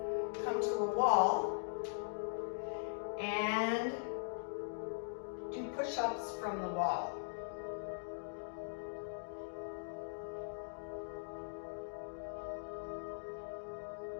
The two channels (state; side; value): silent; right; digital silence